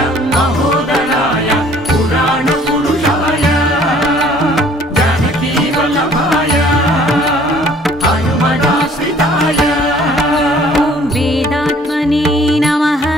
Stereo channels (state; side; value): normal; both; correlation 0.56